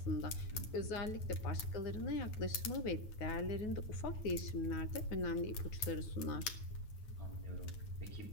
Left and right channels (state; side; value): late; right; 9.3 ms